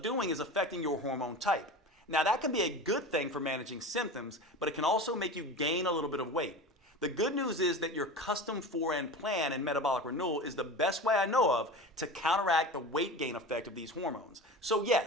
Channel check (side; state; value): both; normal; correlation 0.32